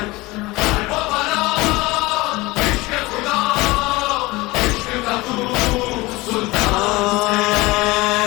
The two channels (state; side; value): quieter; right; 21.7 dB